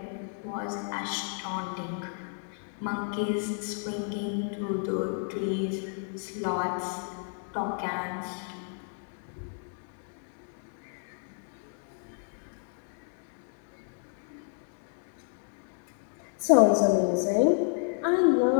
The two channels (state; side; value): silent; right; 57 dB below the other